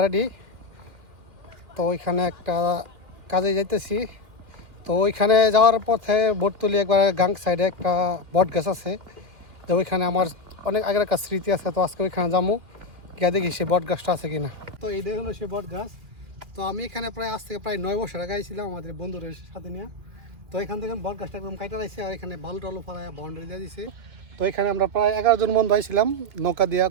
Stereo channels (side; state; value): left; late; 2.5 ms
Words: তো ওইখানে একটা কাজে যাইতেছি। তো ওইখানে যাওয়ার পথে বটতলি একবার গাং সাইডে একটা বট গাছ আছে। তো ওইখানে আমার অনেক আগের একটা স্মৃতি আছে। তো আজকে ওইখানে যাবো, গিয়ে দেখি সেই বট গাছটা আছে কিনা। তো এইটাই হলো সেই বট গাছ। তো আমি এখানে আজ থেকে প্রায় 9 বছর আগে আইছিলাম আমাদের বন্ধুদের সাথে নিয়ে। তো এখান থেকে বট গাছটা একদম কাটা রাখছে, আর এখানে বালু টালু ফেলায় বাউন্ডারি দিয়ে দিছে। তো এখানে আমরা প্রায় 11 জন বন্ধু আইছিলাম, নৌকা দিয়া